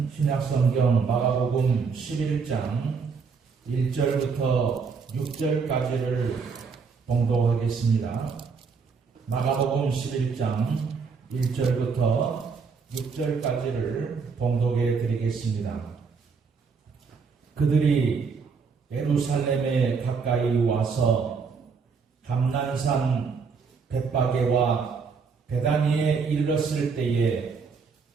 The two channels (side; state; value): left; quieter; 5.3 dB